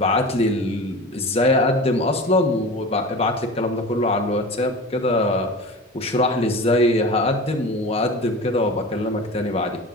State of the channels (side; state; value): both; normal; correlation 0.33